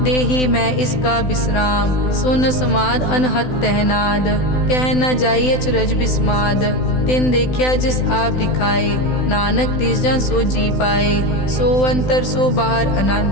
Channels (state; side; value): late; right; 16 ms